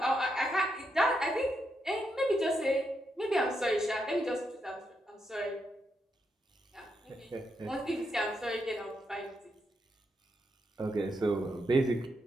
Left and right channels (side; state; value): both; normal; correlation 0.82